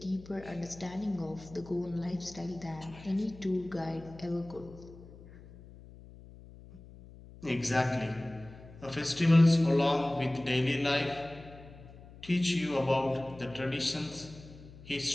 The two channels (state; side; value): noise; left; hum, 19 dB below the sound